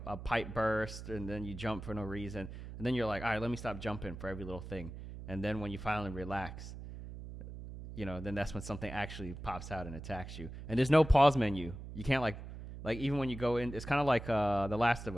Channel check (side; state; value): right; noise; hum, 11 dB below the sound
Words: pipe burst, and then you jump for no reason, and then you're like, all right, let me stop jumping for every little thing, and then when you finally relax, you know, then that's when something actually pops out and attacks you, and there's no pause menu. You can't like even when you go in, it's kind of like The Last of